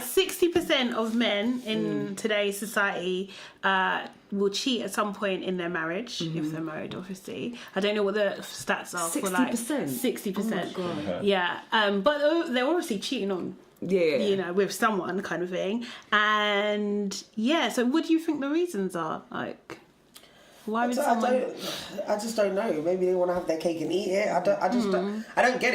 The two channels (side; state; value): both; identical; correlation 1.00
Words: 60% of men in today's society will cheat at some point in their marriage, if they're married, obviously. I don't know what the stats are for like 60%. Oh my God. Yeah, but they're obviously cheating on, with someone kind of thing. And yeah, so what do you think the reasons are? Like, why would someone? I just don't know. Maybe they want to have their cake and eat it. I don't get